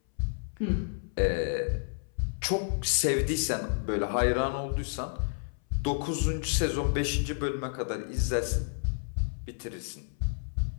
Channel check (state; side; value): silent; right; 58 dB below the other